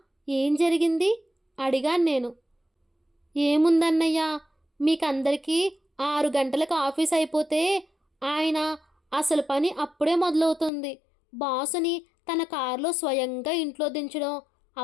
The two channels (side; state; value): right; drops out; at 10.7 s